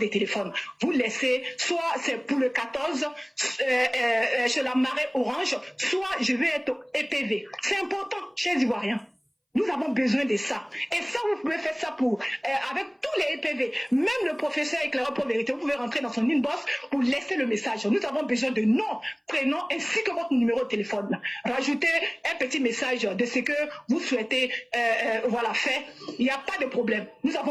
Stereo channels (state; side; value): identical; both; correlation 1.00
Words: téléphone. Vous laissez, soit c'est pour le 14, chez la marée orange, soit je vais être EPV. C'est important, chers Ivoiriens. Nous avons besoin de ça. Et ça, vous pouvez faire ça avec tous les EPV. Même le professeur éclaireur pour vérité, vous pouvez rentrer dans son inbox pour laisser le message. Nous avons besoin de nom, prénom, ainsi que votre numéro de téléphone. Rajoutez un petit message de ce que vous souhaitez faire. Il n'y a pas de problème. Nous